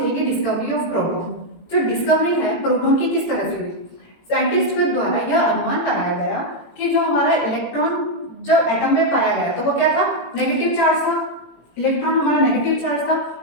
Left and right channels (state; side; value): late; right; 18 ms